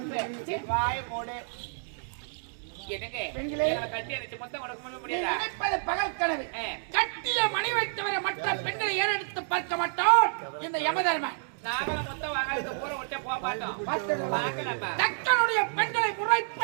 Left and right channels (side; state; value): left; silent; digital silence